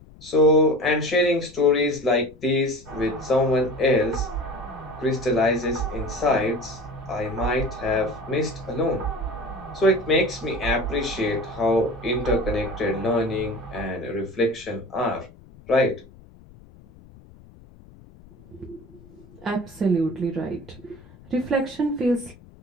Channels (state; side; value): noise; left; rumble, 22 dB below the sound